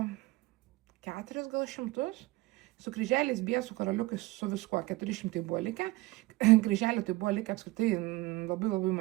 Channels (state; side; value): quieter; left; 19.6 dB